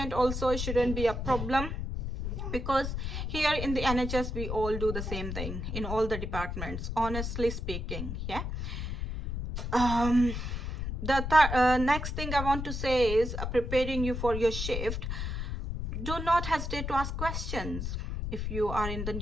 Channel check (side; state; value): left; noise; rumble, 4 dB below the sound